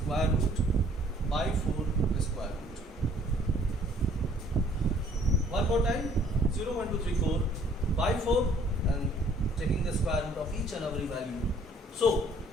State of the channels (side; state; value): both; normal; correlation 0.59